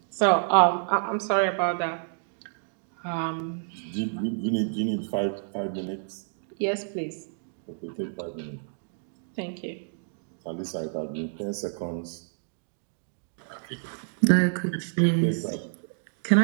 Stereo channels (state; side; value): silent; left; digital silence